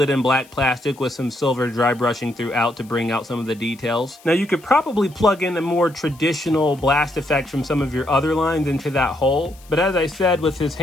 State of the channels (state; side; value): noise; left; hiss, 26 dB below the sound